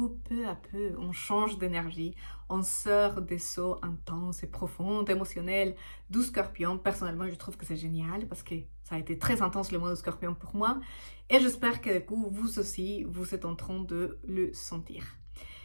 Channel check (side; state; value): both; inverted; correlation -1.00